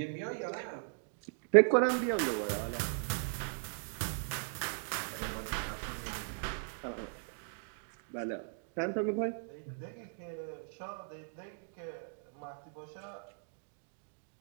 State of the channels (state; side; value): silent; left; digital silence